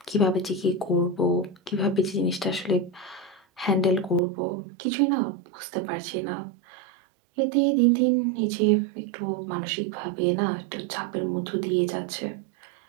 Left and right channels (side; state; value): left; drops out; at 4.2 s